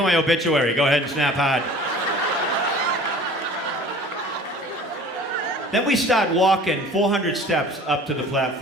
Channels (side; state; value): both; normal; correlation 0.45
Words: my obituary. Go ahead and snap hard. Then we start walking 400 steps up to the